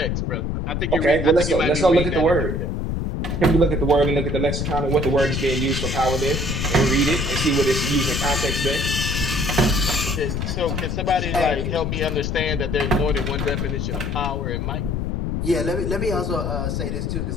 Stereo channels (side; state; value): left; noise; rumble, 1 dB below the sound